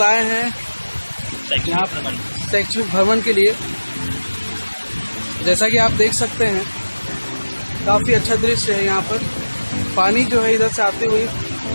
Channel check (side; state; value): both; inverted; correlation -1.00